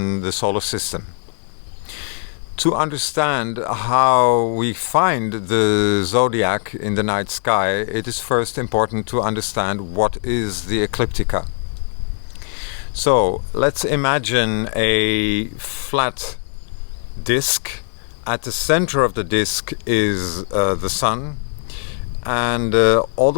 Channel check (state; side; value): silent; right; digital silence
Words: the solar system. To understand how we find the zodiac in the night sky, it is first important to understand what is the ecliptica. So let's imagine a flat disk. At the center of the disk is the sun, and all